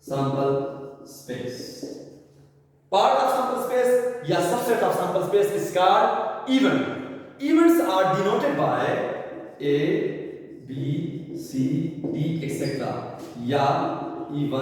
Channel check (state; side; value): identical; both; correlation 1.00